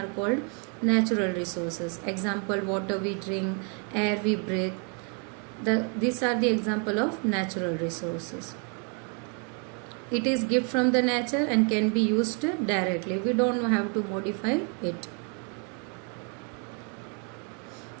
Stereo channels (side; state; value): left; quieter; 37.8 dB